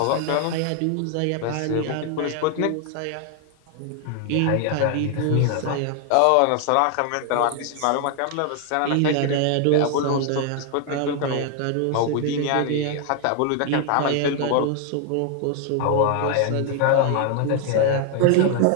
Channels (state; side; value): different; both; correlation 0.00